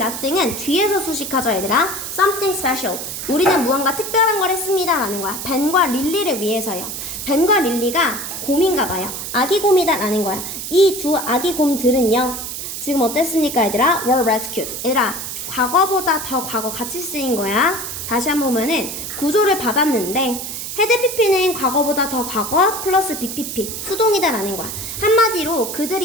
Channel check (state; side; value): noise; right; hiss, 6 dB below the sound